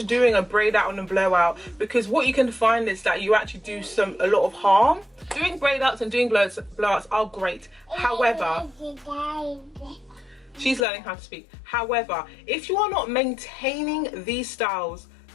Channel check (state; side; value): drops out; right; at 10.9 s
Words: doing a braid out and a blowout, because what you can find is that you actually do a lot of harm. Doing braid outs and doing blowouts are great. However, she's learning how to speak. However, if you are not maintaining these styles